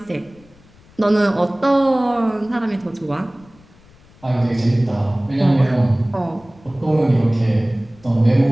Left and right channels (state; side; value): noise; left; rumble, 27 dB below the sound